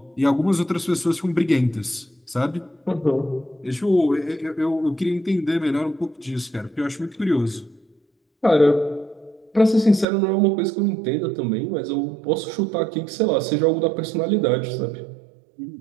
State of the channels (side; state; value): left; drops out; at 10.1 s